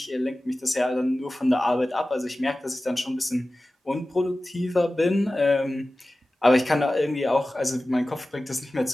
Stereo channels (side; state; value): both; normal; correlation 0.96